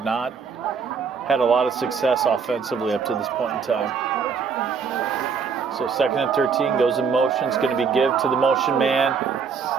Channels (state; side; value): quieter; left; 5.9 dB